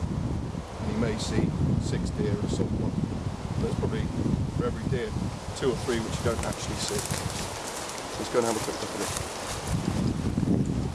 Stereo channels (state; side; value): identical; both; correlation 1.00